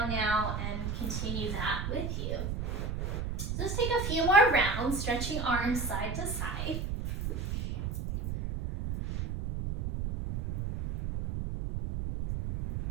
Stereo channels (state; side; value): noise; right; rumble, 2 dB below the sound